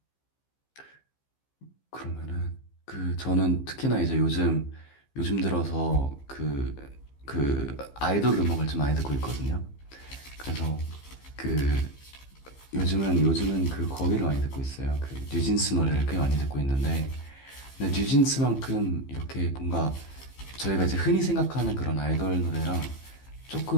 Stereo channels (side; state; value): right; late; 15 ms